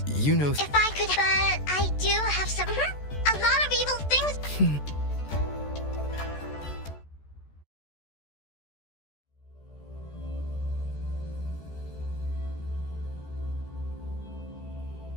You know... If I could... But I do have some... a lot of evil things...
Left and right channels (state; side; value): late; right; 14 ms